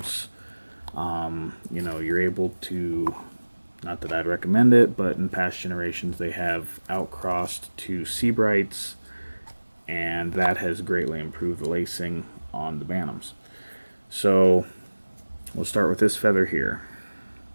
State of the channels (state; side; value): inverted; both; correlation -1.00